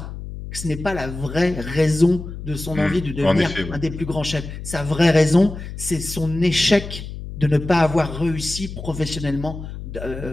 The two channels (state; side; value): noise; left; hum, 10 dB below the sound